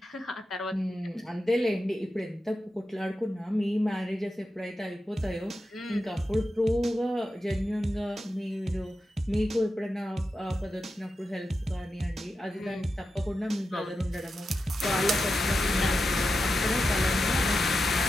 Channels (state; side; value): normal; both; correlation 0.90